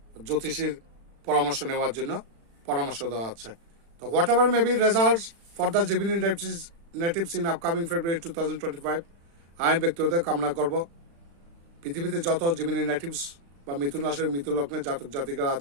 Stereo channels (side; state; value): left; late; 35 ms